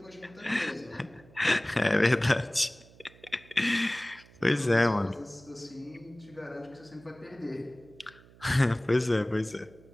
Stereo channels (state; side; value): noise; right; hum, 24 dB below the sound